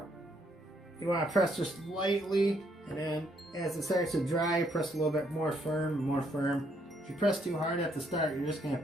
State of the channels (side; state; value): both; normal; correlation 0.71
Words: You want to press just lightly, and then as it starts to dry, press a little bit more firm, more firm. If you press too hard at the start, you're just going